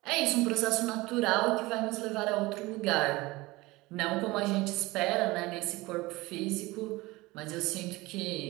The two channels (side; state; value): left; quieter; 21.1 dB